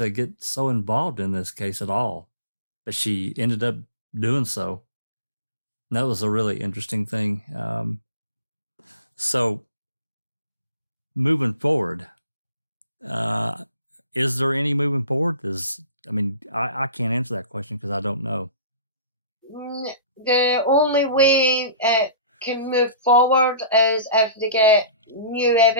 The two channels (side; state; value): both; inverted; correlation -0.44